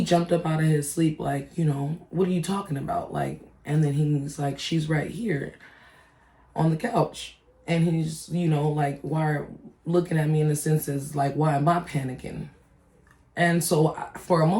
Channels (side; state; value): both; identical; correlation 1.00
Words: jumped up out of his sleep, like, what are you talking about? Like, and then he's like, she's right here on the couch. And he's, like, why, looking at me in the sense as, like, why am I panicking? And so for a